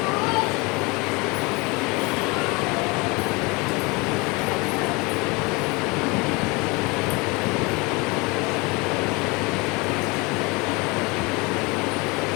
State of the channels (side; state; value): right; quieter; 26.6 dB